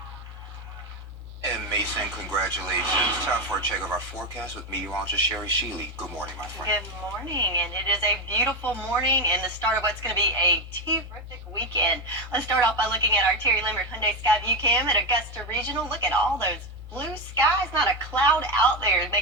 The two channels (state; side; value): normal; both; correlation 0.13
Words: And Mason, congratulations. Time for a check of our forecast with meteorologist Sherry Sheely. Good morning, my friend. Good morning, and it is a beautiful morning and the start of what's going to be a terrific weekend. Let's start off by looking at our Terry Limerick Hyundai Skyview Cam at Augusta Regional. Look at all those blue skies, not a cloud out there,